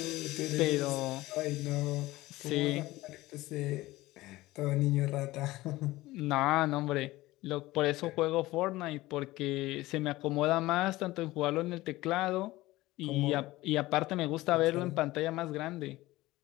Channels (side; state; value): right; quieter; 18.2 dB